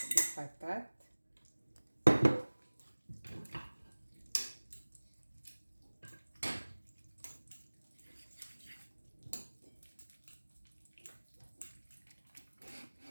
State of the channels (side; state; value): both; inverted; correlation -1.00